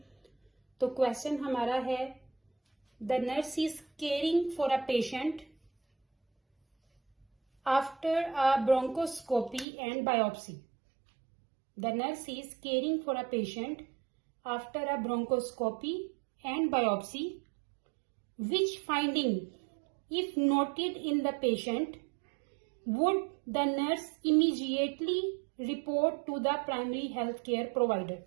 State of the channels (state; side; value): drops out; left; at 9.7 s